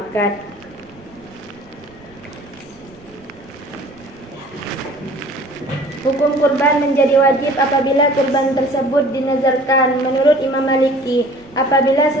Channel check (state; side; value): noise; right; rumble, 27 dB below the sound